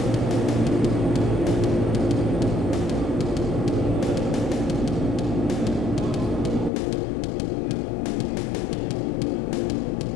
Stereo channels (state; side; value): drops out; right; at 6.7 s